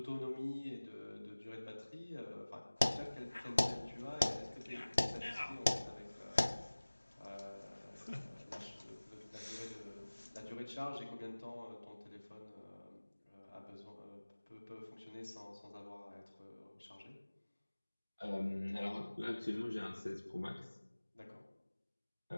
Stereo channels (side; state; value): both; inverted; correlation -1.00